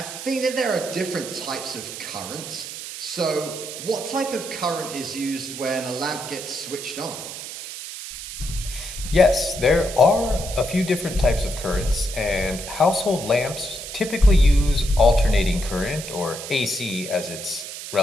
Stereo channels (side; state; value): right; noise; hiss, 9 dB below the sound